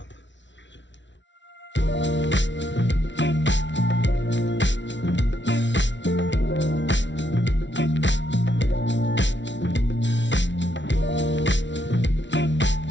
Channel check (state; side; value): late; right; 0.53 ms